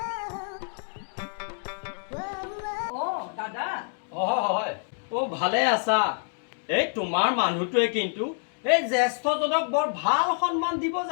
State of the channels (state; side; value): silent; right; 56 dB below the other